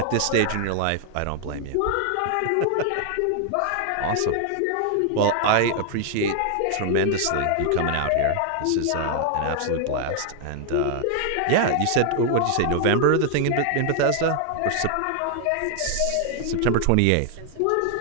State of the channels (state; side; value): different; both; correlation 0.00